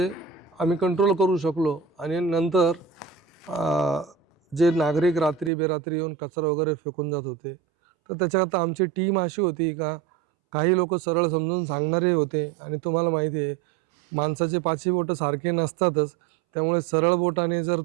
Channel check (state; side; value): drops out; left; at 5.5 s